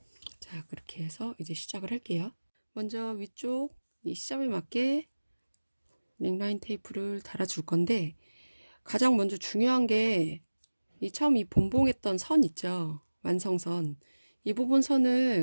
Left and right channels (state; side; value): inverted; both; correlation -1.00